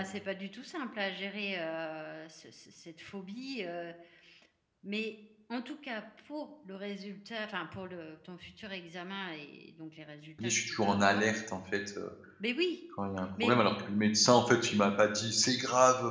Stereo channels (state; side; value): identical; both; correlation 1.00